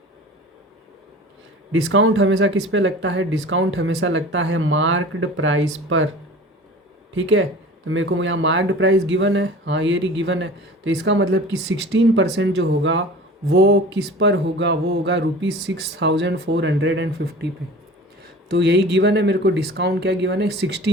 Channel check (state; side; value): normal; both; correlation 0.40